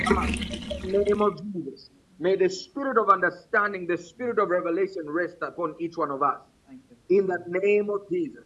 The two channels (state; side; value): identical; both; correlation 1.00